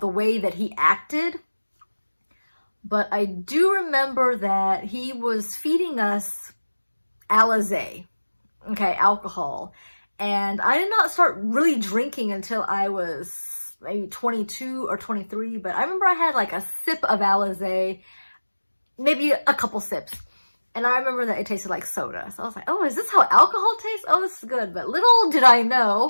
way that he acted. But I do remember that he was feeding us Alizé, okay, alcohol. And I did not start really drinking until I was maybe 22 or 23. But I remember I had like a sip of Alizé, maybe a couple sips. And I remember that it tasted like soda. So I was like, oh, is this how alcohol tastes? Oh, this is good. But little did I know,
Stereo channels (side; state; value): both; inverted; correlation -1.00